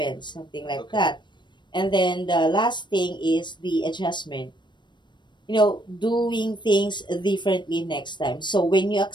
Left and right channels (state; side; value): late; right; 0.22 ms